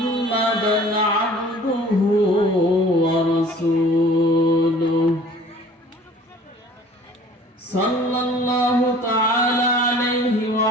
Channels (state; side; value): normal; both; correlation 0.49